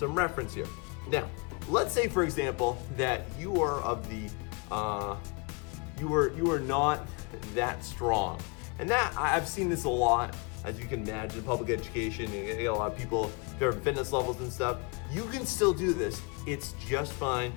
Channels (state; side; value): quieter; right; 32.0 dB